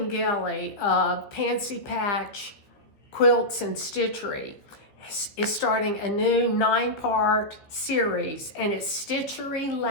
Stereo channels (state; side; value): late; right; 15 ms